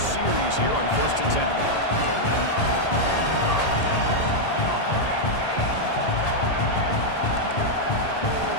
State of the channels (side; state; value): right; late; 1.8 ms